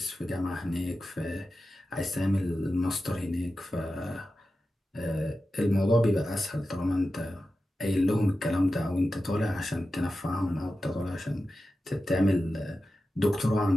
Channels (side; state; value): both; normal; correlation 0.92